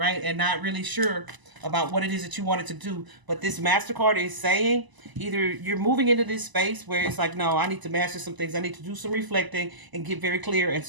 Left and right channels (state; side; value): late; left; 1.0 ms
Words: And not really sure about what it is that you wanted to do. But this MasterCard is saying either you're moving into this space where it's like, no, I need to master some things. I need to do some reflecting and get very clear and